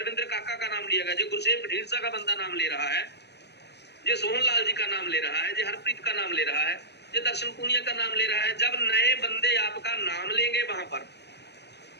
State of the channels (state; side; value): late; right; 0.49 ms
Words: काका का नाम लिया गया, जी गुरसेन ढींढसा का बंदा नाम ले रहा है, जी सोहन लाल जी का नाम ले रहा है, जी हरप्रीत का नाम ले रहा है, जी दर्शन पूनिया का नाम ले रहा है। जब नए बंदे आपका नाम लेंगे वहां पर,